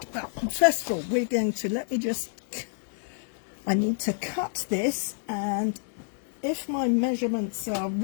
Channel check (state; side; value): silent; right; digital silence